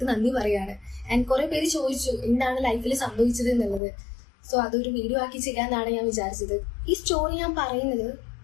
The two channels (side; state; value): right; drops out; at 3.8 s